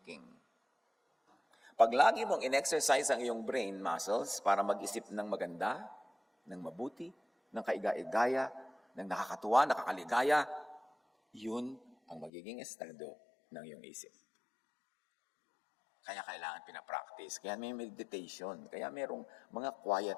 Pag lagi mong in-exercise ang iyong brain muscles para mag-isip ng maganda, ng mabuti, ng kaiga-igaya, ng nakakatuwa, nakakaligaya, yun ang magiging estado ng iyong isip. Kaya kailangan pinapractice. Kaya may meditation. Kaya merong mga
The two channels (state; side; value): drops out; right; at 12.3 s